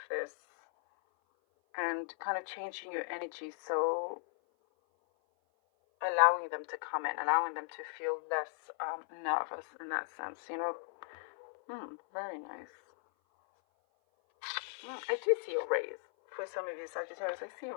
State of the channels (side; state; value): right; silent; 53 dB below the other